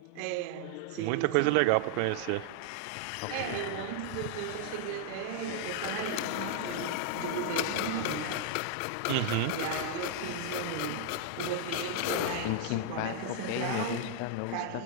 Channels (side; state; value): both; different; correlation 0.00